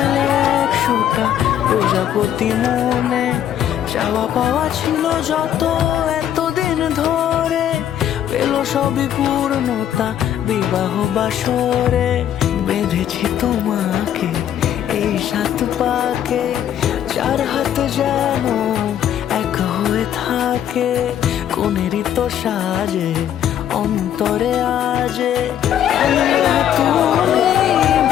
একশোটা প্রজাপতি মনে চাওয়া পাওয়া ছিল যত এতদিন ধরে পেল সবই পূর্ণতা বিবাহ বাসরে বেঁধেছি তোমাকে এই সাত পাকে চার হাত যেন এক হয়ে থাকে কোনেরই তো সাজে অন্তরে আজে আনলে তুমি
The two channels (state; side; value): quieter; right; 10.3 dB